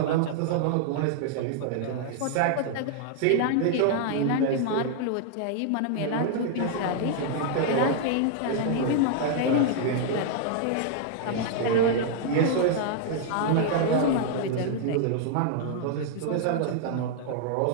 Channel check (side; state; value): both; different; correlation 0.00